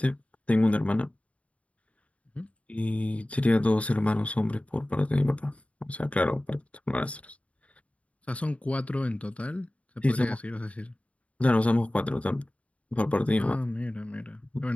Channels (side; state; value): right; late; 0.065 ms